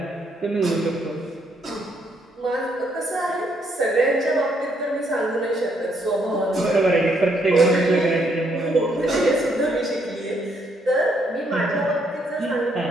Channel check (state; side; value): normal; both; correlation 0.72